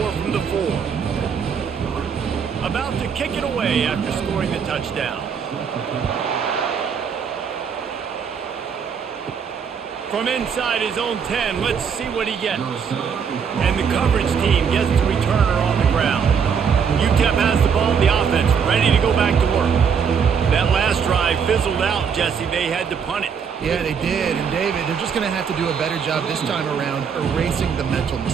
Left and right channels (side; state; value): left; quieter; 6.8 dB